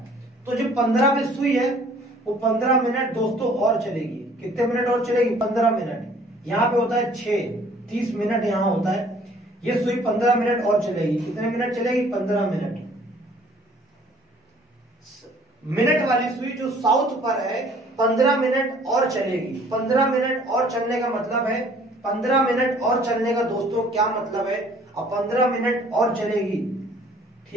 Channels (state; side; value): normal; both; correlation 0.56